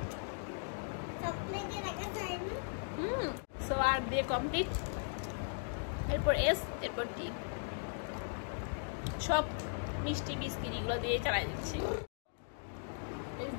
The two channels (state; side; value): silent; right; digital silence